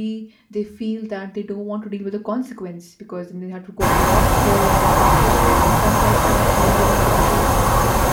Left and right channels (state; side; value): identical; both; correlation 1.00